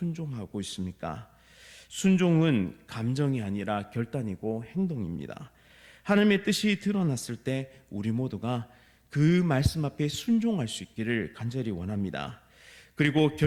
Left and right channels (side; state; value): both; identical; correlation 1.00